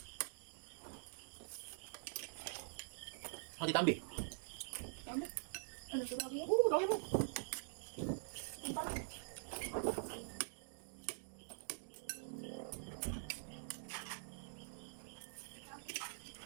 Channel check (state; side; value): silent; left; digital silence